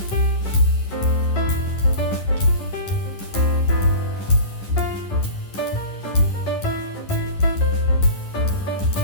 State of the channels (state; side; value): late; right; 10 ms